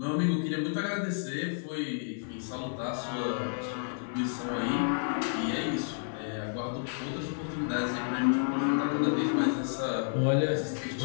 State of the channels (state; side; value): silent; right; 57 dB below the other